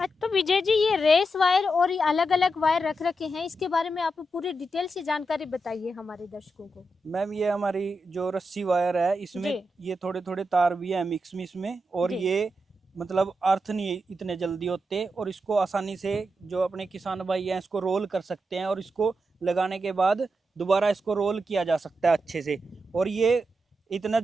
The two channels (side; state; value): both; normal; correlation 0.86